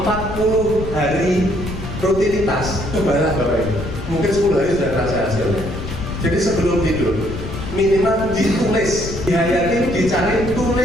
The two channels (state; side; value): noise; left; rumble, 8 dB below the sound